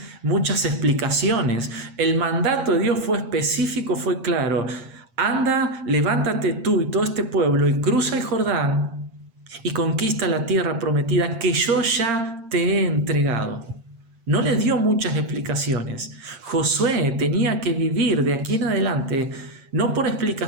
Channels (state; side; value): late; left; 8.7 ms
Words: explicaciones. El mandato de Dios fue específico, fue claro. Anda, levántate tú y todo este pueblo y cruza el Jordán y conquista la tierra prometida que yo ya te he entregado. No le dio muchas explicaciones. Josué tenía que vivir de aquí en adelante no por